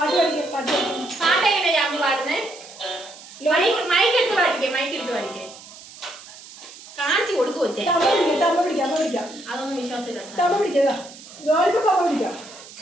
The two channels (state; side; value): noise; right; hiss, 18 dB below the sound